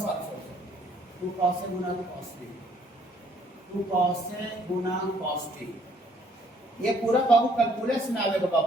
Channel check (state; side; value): normal; both; correlation 0.63